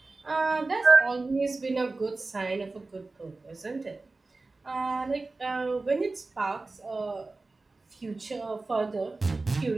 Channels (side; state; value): left; quieter; 3.5 dB